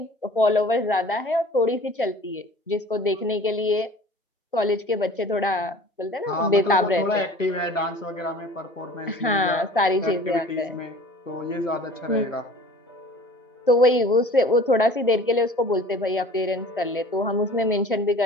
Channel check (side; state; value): both; normal; correlation 0.44